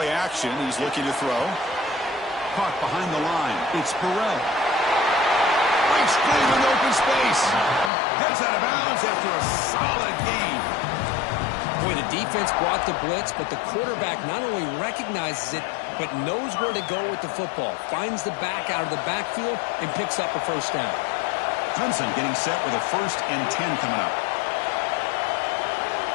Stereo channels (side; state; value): right; drops out; at 7.9 s